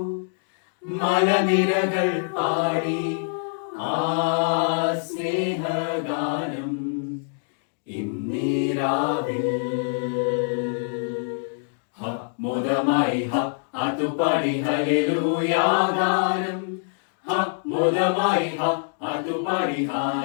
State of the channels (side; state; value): right; silent; digital silence